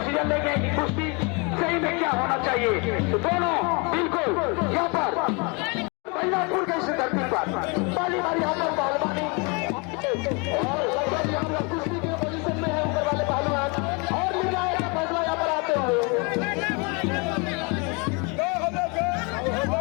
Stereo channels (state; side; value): quieter; right; 31.4 dB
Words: लेंगे कि कुश्ती सही में क्या होना चाहिए। तो दोनों बिल्कुल यहाँ पर महिलापुर के इस धरती पर पहली बार यहाँ पर पहलवानी और लगभग यहाँ पर कुश्ती के पोजीशन में है ऊपर वाले पहलवान और निर्णायक का फैसला यहाँ पर आते हुए